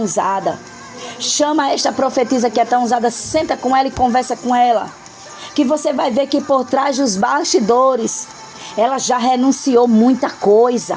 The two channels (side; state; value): both; identical; correlation 1.00